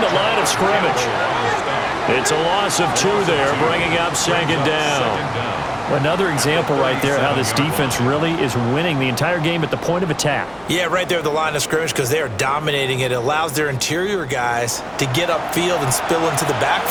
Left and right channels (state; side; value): noise; left; hum, 29 dB below the sound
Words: line of scrimmage. It's a loss of 2 there, bringing up second down. Another example right there how this defense really is winning the entire game at the point of attack. Yeah, right there at the line of scrimmage because they are dominating it. It allows their interior guys to get upfield and spill into the